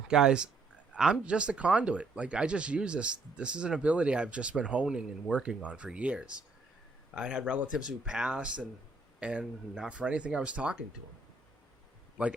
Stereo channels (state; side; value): quieter; left; 3.6 dB